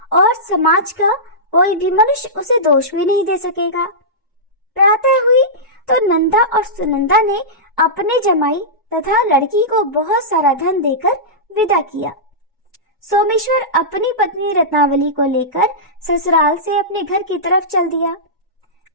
और समाज का कोई भी मनुष्य उसे दोष भी नहीं दे सकेगा। प्रातः हुई तो नंदा और सुनंदा ने अपने जमाई तथा लड़की को बहुत सारा धन देकर विदा किया। सोमेश्वर अपनी पत्नी रत्नावली को लेकर ससुराल से अपने घर की तरफ चल दिया।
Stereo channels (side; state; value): both; normal; correlation -0.15